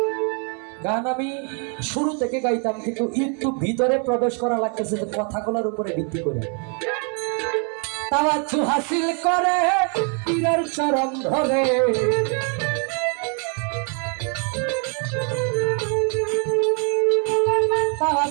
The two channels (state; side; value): quieter; left; 39.0 dB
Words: গান আমি শুরু থেকে গাইতাম, কিন্তু একটু ভিতরে প্রবেশ করা লাগতেছে কথাগুলোর উপরে ভিত্তি করে। তাওয়াজ্জু হাসিল করে পীরের চরণ ধরে,